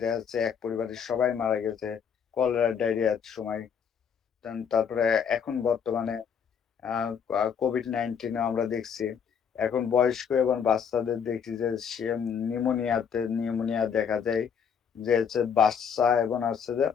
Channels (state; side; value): quieter; right; 7.2 dB